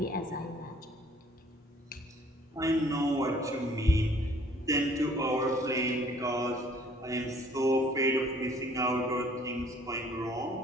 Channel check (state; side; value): normal; both; correlation 0.58